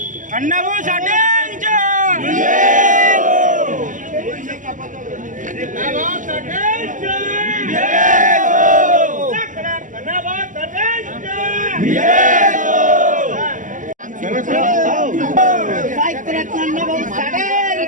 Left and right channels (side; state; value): left; late; 0.37 ms